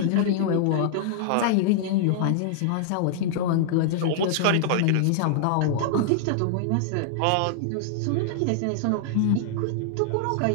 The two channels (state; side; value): different; both; correlation -0.01